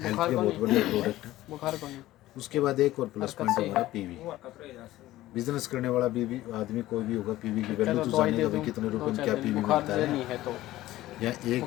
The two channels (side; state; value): right; quieter; 15.8 dB